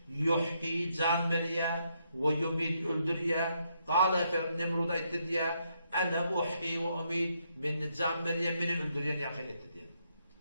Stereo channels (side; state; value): both; inverted; correlation -0.76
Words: yuhyi can veriye ve yumit öldürüye. Kâle Nemrut'a etti diye ene uhyi ve umit beni can veriye beni öldürüyen yakın etti diye.